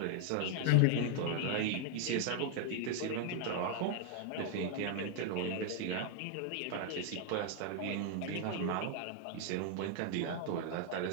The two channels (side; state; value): both; different; correlation 0.00